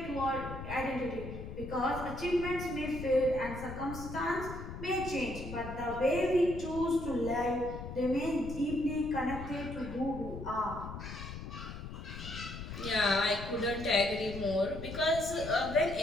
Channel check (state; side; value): noise; left; rumble, 9 dB below the sound